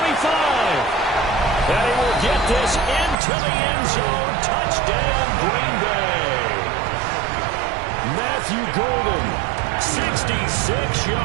And he will get this into the end zone. Touchdown, Green Bay. Matthew Golden, 66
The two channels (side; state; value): left; drops out; at 3.2 s